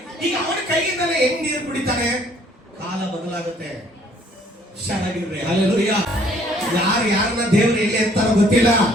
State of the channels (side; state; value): both; normal; correlation 0.61